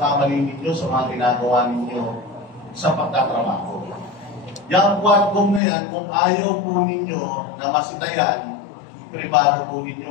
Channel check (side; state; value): right; drops out; at 5.6 s